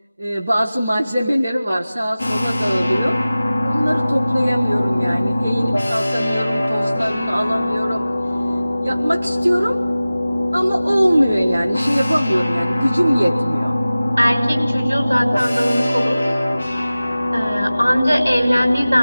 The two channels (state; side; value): inverted; both; correlation -0.97